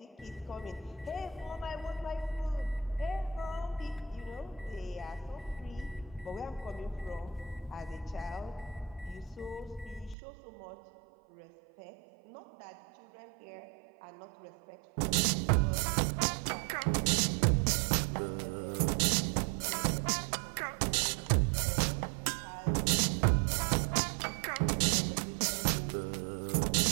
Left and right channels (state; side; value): drops out; left; at 10.2 s